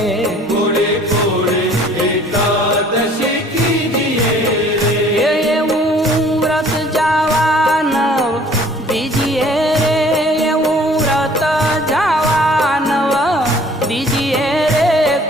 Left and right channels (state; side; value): normal; both; correlation 0.54